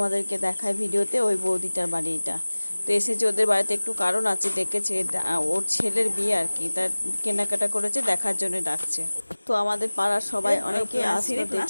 দেখায় ভিডিওতে, ওই বৌদিটার বাড়ি এটা। তো এসেছে ওদের বাড়িতে, একটু কারণ আছে, ডেকেছে ওর ছেলের বিয়ে আর কি, তার কেনাকাটা করেছে, দেখার জন্য ডাকছে। তো আমাদের পাড়ার সবাই অনেকে আসলো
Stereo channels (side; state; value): both; inverted; correlation -1.00